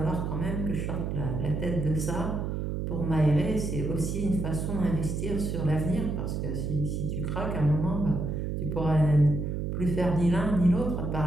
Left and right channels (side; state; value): right; noise; hum, 2 dB below the sound